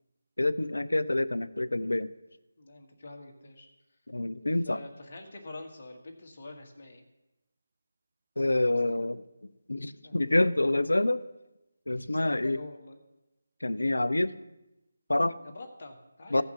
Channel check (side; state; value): both; inverted; correlation -0.99